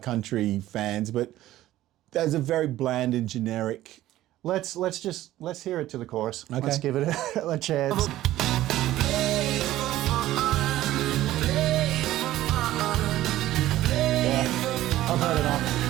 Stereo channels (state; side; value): quieter; left; 14.7 dB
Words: country fans, but there's a very bland and generic. Let's hear it to the chorus. Okay. Let's give it a chance. Yeah, I've heard enough.